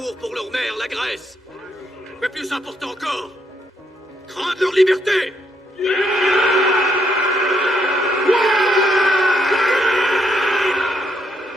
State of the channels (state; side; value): normal; both; correlation 0.75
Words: pour leur mère, la Grèce. Mais plus important encore, craindre leur liberté. Ne